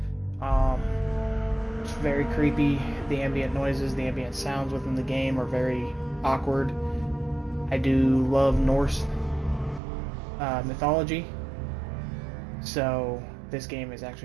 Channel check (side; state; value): left; drops out; at 9.8 s